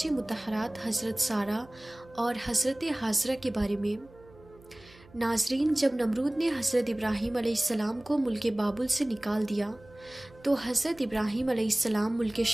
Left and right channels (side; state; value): right; noise; hum, 24 dB below the sound